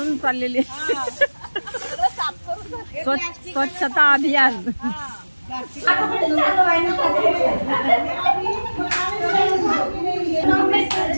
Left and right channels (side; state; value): both; inverted; correlation -1.00